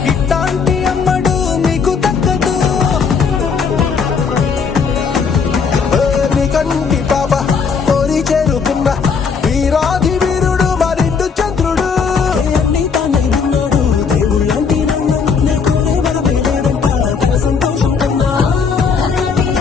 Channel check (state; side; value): quieter; right; 5.7 dB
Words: ఇట్లాంటి అమ్మడు మీకు దక్కదు నీ కంటి పాప కోరి చేరుకున్న వీరాది వీరుడు మరిండు చంద్రుడు నీ తానై ఉన్నాడు దేవుళ్ళంటి సంతోషం కన్నా